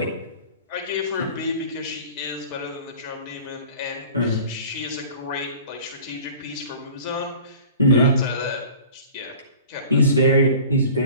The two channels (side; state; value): both; inverted; correlation -0.44